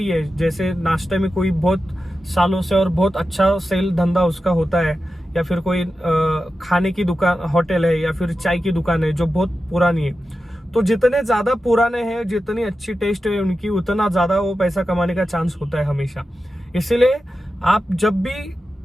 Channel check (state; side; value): normal; both; correlation 0.92